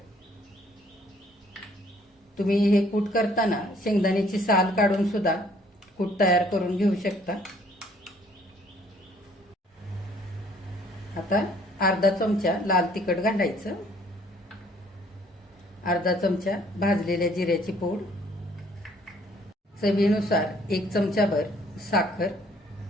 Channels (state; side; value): normal; both; correlation 0.61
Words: तुम्ही हे कूट करताना शेंगदाण्याची साल काढून सुद्धा कूट तयार करून घेऊ शकता. आता अर्धा चमचा लाल तिखट घालायचं, अर्धा चमचा भाजलेल्या जिऱ्याची पूड, चवीनुसार 1 चमचाभर साखर.